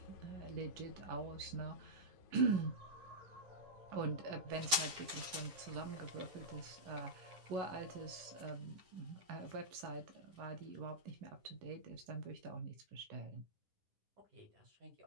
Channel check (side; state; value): left; late; 10 ms